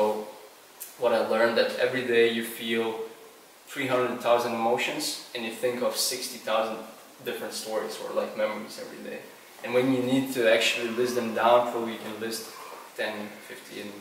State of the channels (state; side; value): identical; both; correlation 1.00